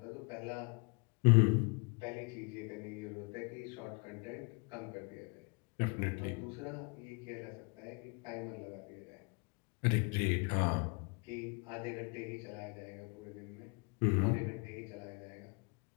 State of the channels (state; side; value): quieter; right; 33.3 dB